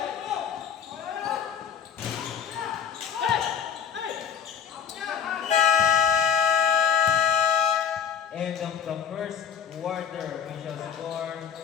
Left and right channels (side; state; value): right; quieter; 7.6 dB